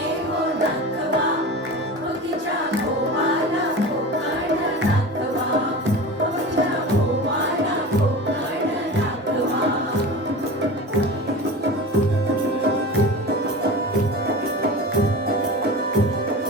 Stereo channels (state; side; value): normal; both; correlation 0.32